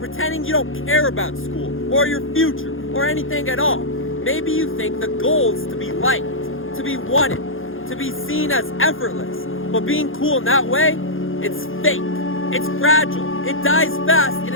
you don't care about school or your future or anything at all. Maybe you think the goal is to be liked, to be wanted, to be seen as effortless. But being cool in that way, it's fake, it's fragile, it dies fast, and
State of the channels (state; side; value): late; right; 0.59 ms